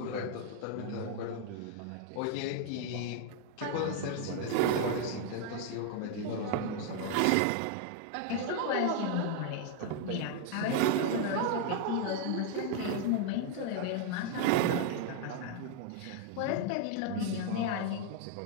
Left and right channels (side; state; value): both; different; correlation 0.00